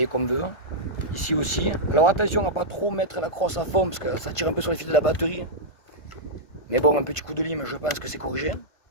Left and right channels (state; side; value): late; right; 1.5 ms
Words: qu'on veut. Ici aussi. Alors attention à pas trop mettre la crosse à fond parce que ça tire un peu sur les fils de la batterie. Mais bon, un petit coup de lime, je pense que c'est corrigé.